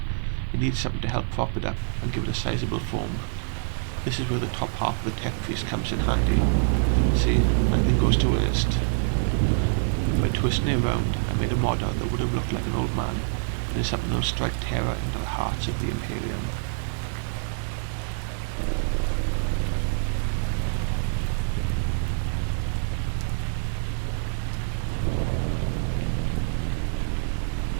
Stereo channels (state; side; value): silent; left; 59 dB below the other